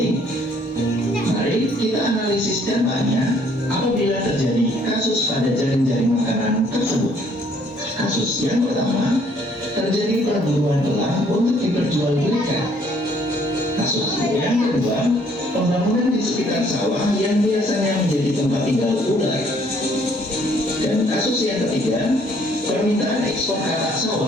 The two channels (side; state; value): both; normal; correlation 0.63